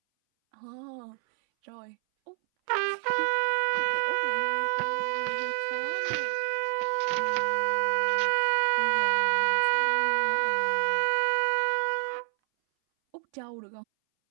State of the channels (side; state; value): left; silent; 59 dB below the other